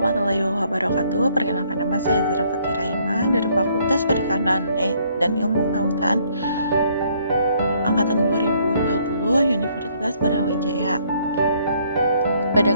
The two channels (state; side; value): inverted; both; correlation -0.66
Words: wabarakatuh. Perkenalkan, nama saya Zara Fatira Ima dari Fakultas Perikanan dan Ilmu Kelautan Angkatan 2020 Universitas Brawijaya. Pada